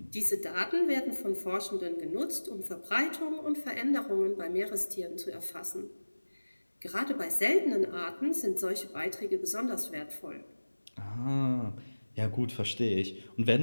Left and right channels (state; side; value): inverted; both; correlation -1.00